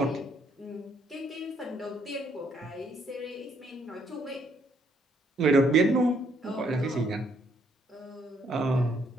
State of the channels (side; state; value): both; normal; correlation 0.69